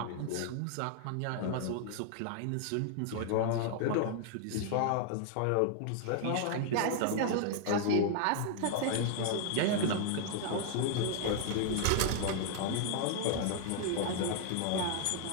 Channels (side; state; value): both; different; correlation 0.00